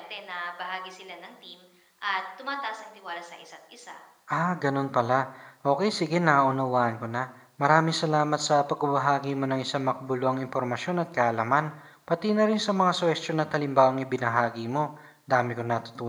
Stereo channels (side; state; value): both; identical; correlation 1.00